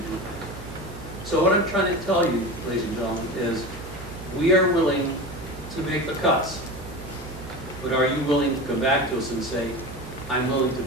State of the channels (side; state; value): right; noise; hum, 14 dB below the sound